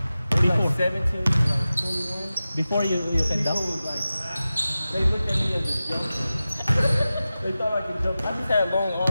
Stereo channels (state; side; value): inverted; both; correlation -0.95